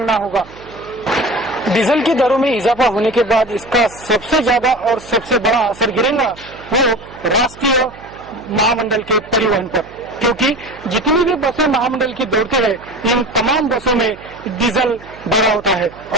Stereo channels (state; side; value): noise; right; hum, 21 dB below the sound